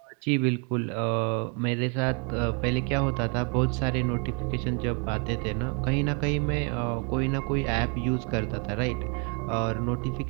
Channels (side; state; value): left; quieter; 33.7 dB